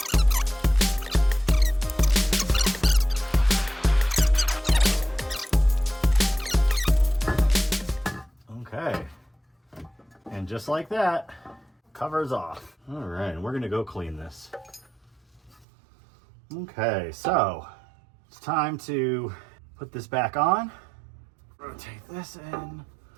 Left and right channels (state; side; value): drops out; left; at 15.7 s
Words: Okay. And just like that, cover's off. All right, and we're gonna go clean this. Okay, so it's time to put this back on. Rotate this in.